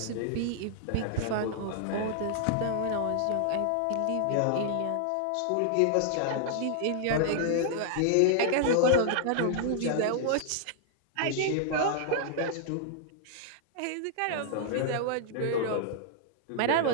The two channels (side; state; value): both; different; correlation -0.01